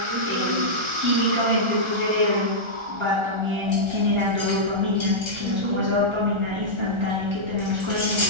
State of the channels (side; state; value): left; late; 1.3 ms